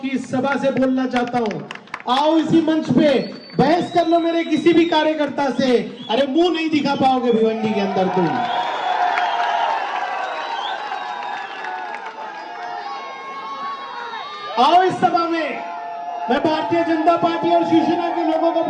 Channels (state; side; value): identical; both; correlation 1.00